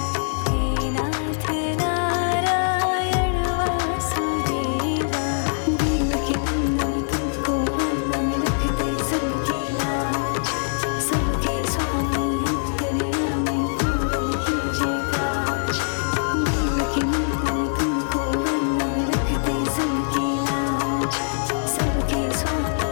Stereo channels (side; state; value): right; silent; digital silence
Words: हे नाथ नारायण वासुदेवा। देवकी नंदन तुमको वंदन, रखते सबकी लाज। सबके स्वामी अंतर्यामी पूर्ण कीजिए काज। देवकी नंदन तुमको वंदन, रखते सबकी लाज। सबके